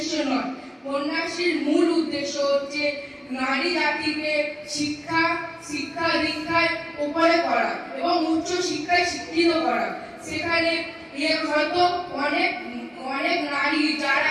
নয়। কন্যাশ্রীর মূল উদ্দেশ্য হচ্ছে নারী জাতিকে শিক্ষা দীক্ষায় উপরে করা এবং উচ্চ শিক্ষায় শিক্ষিত করা। সেখানে হয়তো অনেক নারী যারা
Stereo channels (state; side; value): identical; both; correlation 1.00